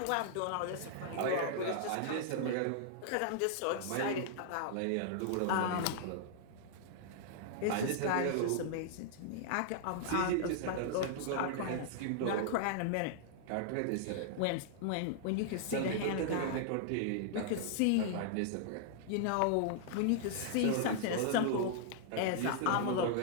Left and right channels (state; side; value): different; both; correlation -0.01